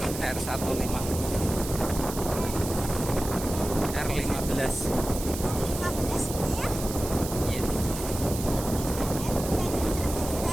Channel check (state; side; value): noise; right; hiss, 9 dB below the sound